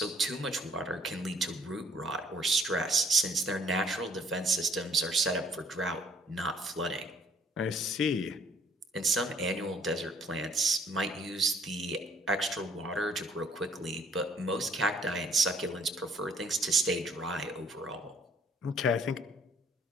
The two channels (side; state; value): both; normal; correlation 0.60